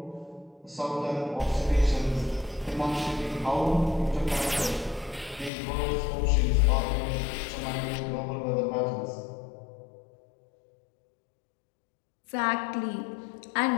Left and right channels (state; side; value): drops out; right; at 5.5 s